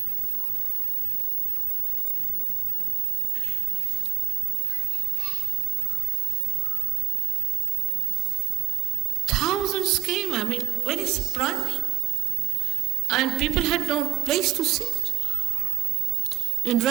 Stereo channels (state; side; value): quieter; left; 15.2 dB